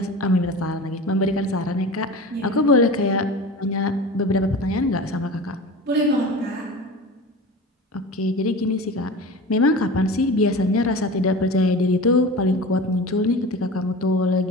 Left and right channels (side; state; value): both; normal; correlation 0.33